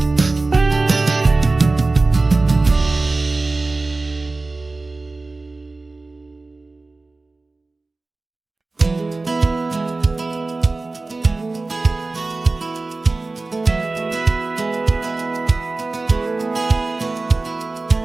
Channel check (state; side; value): quieter; left; 3.4 dB